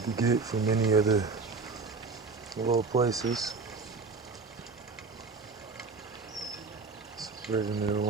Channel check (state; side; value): quieter; left; 4.3 dB